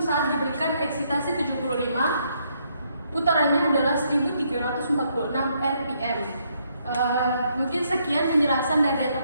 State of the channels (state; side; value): inverted; both; correlation -0.73